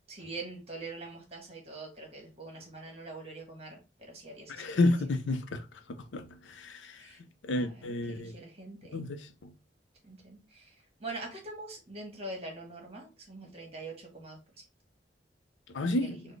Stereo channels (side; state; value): both; normal; correlation 0.61